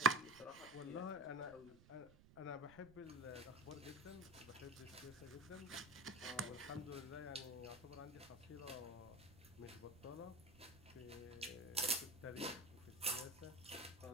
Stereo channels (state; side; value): noise; right; rumble, 21 dB below the sound